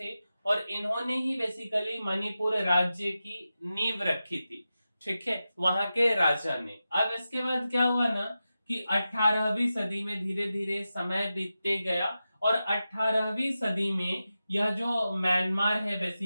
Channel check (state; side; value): inverted; both; correlation -0.92